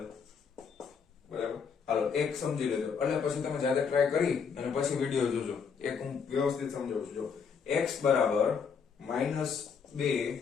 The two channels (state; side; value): quieter; right; 6.2 dB